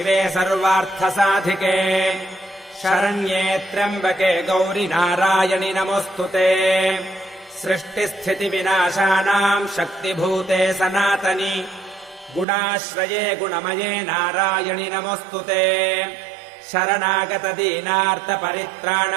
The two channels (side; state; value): left; drops out; at 12.5 s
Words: सर्वार्थसाधिके शरण्ये त्र्यम्बके गौरि नारायणि नमोऽस्तुते सृष्टिस्थितिविनाशानाम् शक्तिभूते सनातनि गुणाश्रये गुणमये नारायणि नमोऽस्तुते